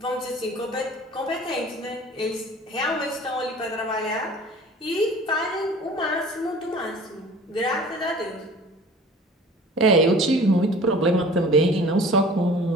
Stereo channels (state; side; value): normal; both; correlation 0.45